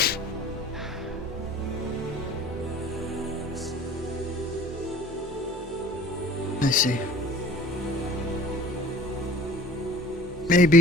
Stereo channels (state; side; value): normal; both; correlation 0.46